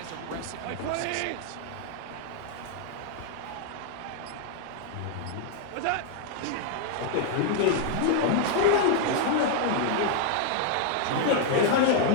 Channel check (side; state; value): both; different; correlation 0.00